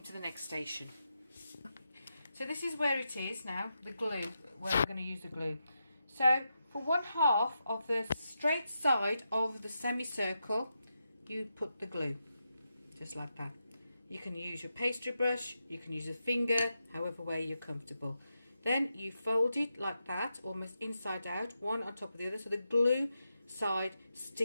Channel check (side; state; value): both; inverted; correlation -0.87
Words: to the next station. So this is where it is now, the glue, where we're going to use the glue. So for 1/2 of the straight side of the semicircle, you put the glue, just like that. You can use your pastry brush, you can use a finger, however way you're comfortable. Then you fold it like that, almost inside out, one on top of the other, so the glue side